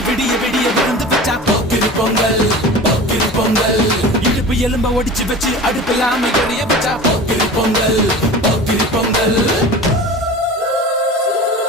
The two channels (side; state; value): both; normal; correlation 0.36